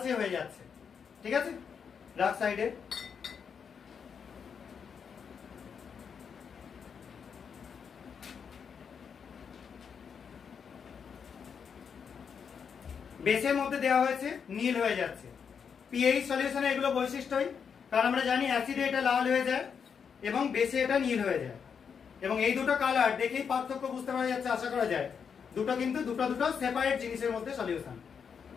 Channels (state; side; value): quieter; right; 6.7 dB